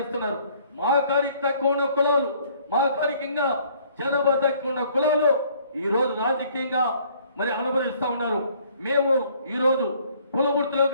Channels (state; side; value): inverted; both; correlation -0.60